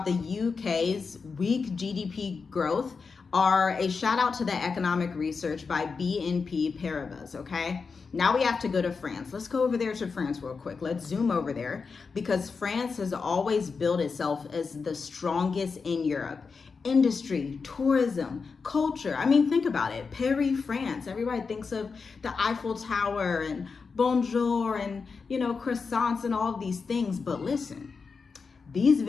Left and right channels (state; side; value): quieter; right; 5.0 dB